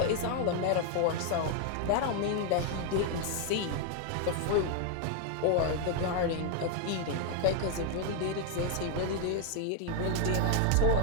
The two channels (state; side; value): different; both; correlation 0.00